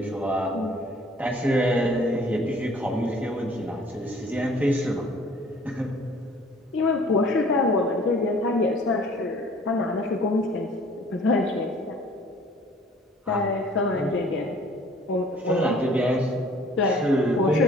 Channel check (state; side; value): normal; both; correlation 0.53